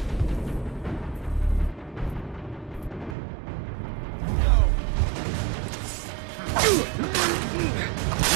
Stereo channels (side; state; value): left; drops out; at 3.2 s